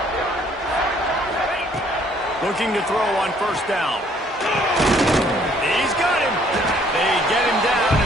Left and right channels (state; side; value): normal; both; correlation 0.62